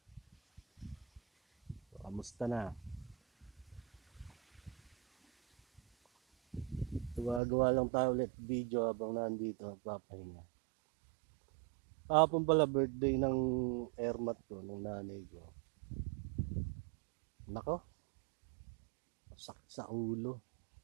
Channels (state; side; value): drops out; left; at 7.4 s